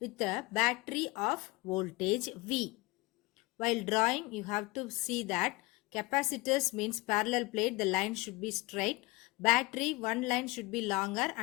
a battery of voltage V. While drawing, you have to see that capacitors means parallel plate, the line should be straight. Battery, one line should be longer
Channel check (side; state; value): right; quieter; 23.1 dB